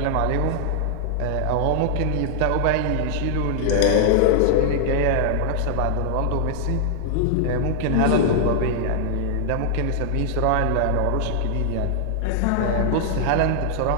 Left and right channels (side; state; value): both; different; correlation -0.01